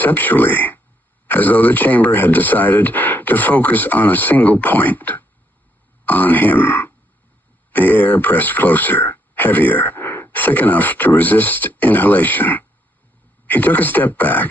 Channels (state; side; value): normal; both; correlation 0.74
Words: as though the chamber had decided to focus on a single point. On him. The air pressed closer, heavier, thick enough to resist inhalation. He took a step